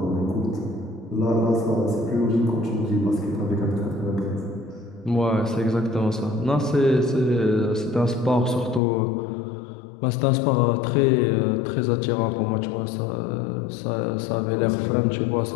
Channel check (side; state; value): right; drops out; at 8.8 s